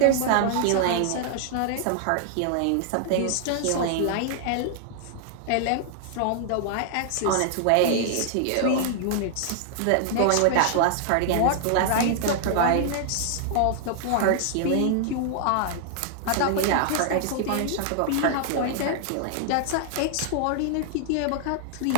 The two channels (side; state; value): both; different; correlation -0.01